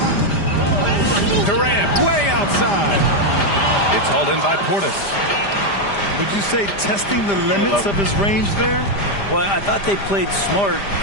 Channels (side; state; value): right; late; 5.0 ms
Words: Durant way outside. It's hauled in by Portis. Would you say testing the limits of his range there? Well, I thought they played smart,